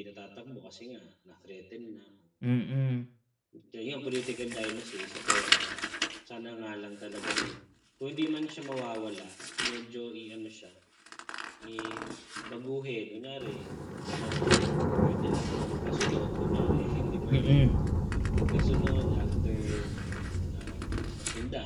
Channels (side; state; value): both; identical; correlation 1.00